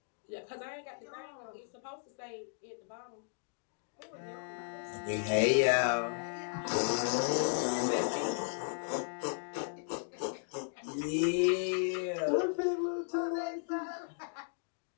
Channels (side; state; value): right; silent; digital silence